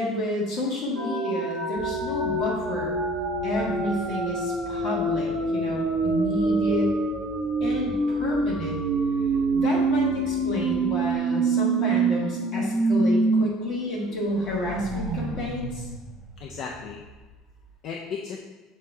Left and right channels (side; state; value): both; normal; correlation 0.52